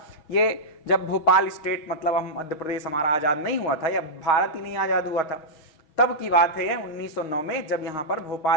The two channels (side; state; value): right; late; 6.3 ms